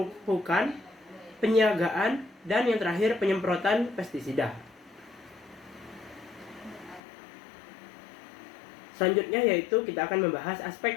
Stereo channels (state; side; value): drops out; right; at 7.0 s